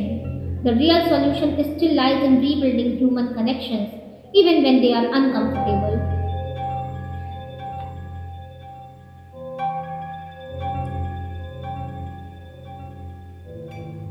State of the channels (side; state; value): both; identical; correlation 1.00